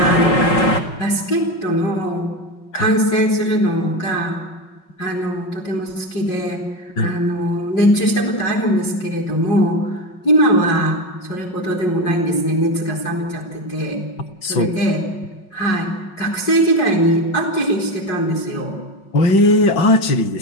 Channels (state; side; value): late; right; 5.4 ms